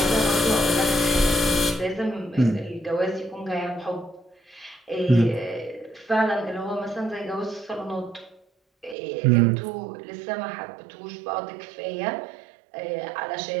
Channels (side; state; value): left; drops out; at 9.0 s